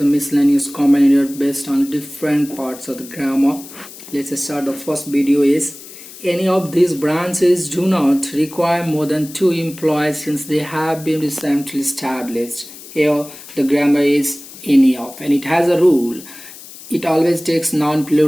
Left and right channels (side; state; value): left; noise; hiss, 17 dB below the sound